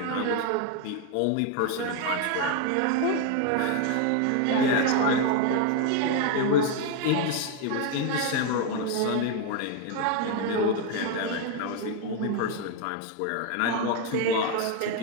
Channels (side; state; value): both; different; correlation 0.01